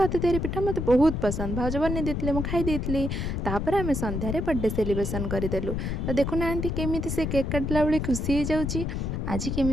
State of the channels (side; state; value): left; noise; rumble, 2 dB below the sound